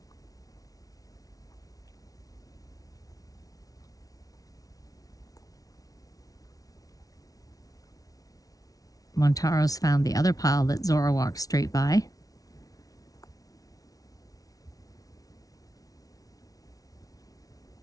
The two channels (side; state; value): right; late; 0.18 ms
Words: Montaro's found the other pile that Zora walked straight by.